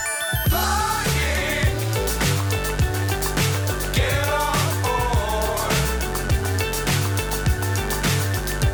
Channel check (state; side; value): identical; both; correlation 1.00